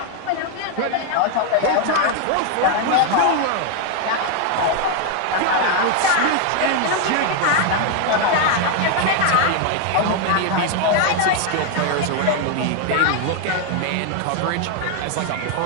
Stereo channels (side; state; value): both; different; correlation 0.01